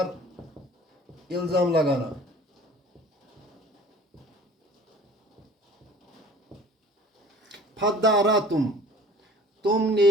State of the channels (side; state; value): both; normal; correlation 0.46